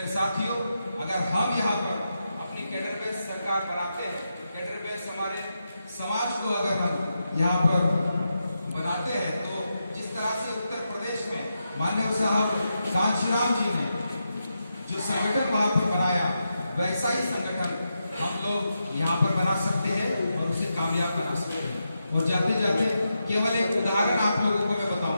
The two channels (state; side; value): inverted; both; correlation -0.85